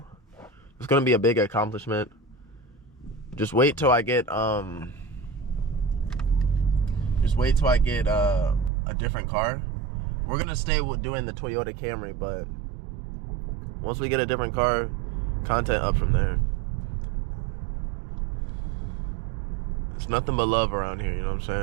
It's gonna be a big accomplishment. Just wait till I get a different car. We're gonna stay with doing the Toyota Camry, but once we get a different car, content up from there. It's nothing but love around here, you know what I'm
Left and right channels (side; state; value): left; drops out; at 8.7 s